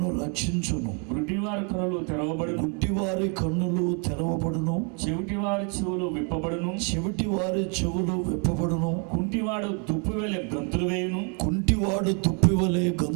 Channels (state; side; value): quieter; left; 37.4 dB